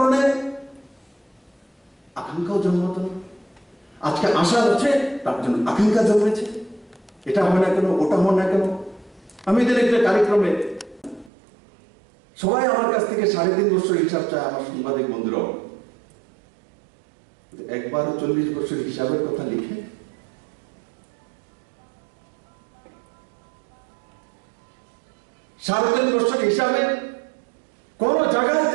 আকাঙ্ক্ষাও জন্মাতো না। আজকে আশা হচ্ছে, তার জন্য আকাঙ্ক্ষা জন্মেছে। এটা হয় না কেন, ওটা হয় না কেন। আমি এদের একটা কার্যক্রমে সবাই আমার কাছ থেকে 3.5 বছর হিসাব চায়, আমার সাংবাদিক বন্ধুরাও। একবারও 40 বছর হিসাবের কথা লিখে 3.5 বছর হিসাবে কোন জায়গায়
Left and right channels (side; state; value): left; drops out; at 11.3 s